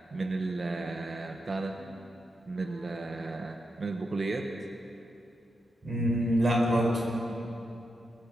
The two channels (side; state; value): both; normal; correlation 0.85